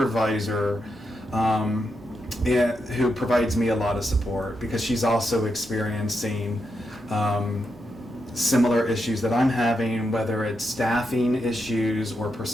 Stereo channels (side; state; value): both; normal; correlation 0.84